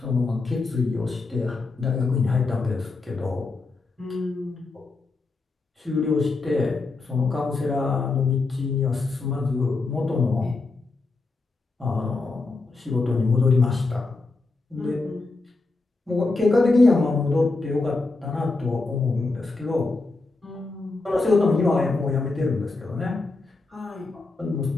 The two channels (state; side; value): quieter; right; 3.6 dB